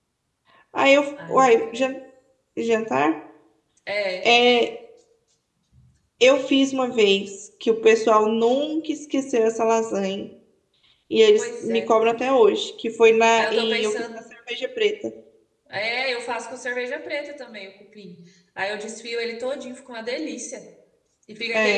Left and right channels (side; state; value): both; identical; correlation 1.00